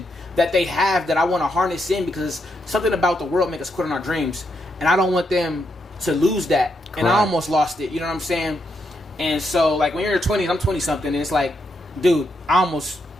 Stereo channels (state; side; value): normal; both; correlation 0.80